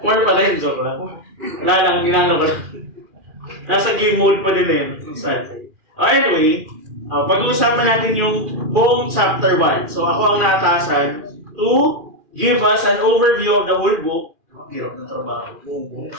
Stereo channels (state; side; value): late; left; 2.4 ms